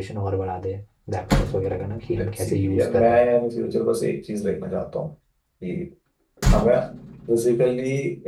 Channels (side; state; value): both; identical; correlation 1.00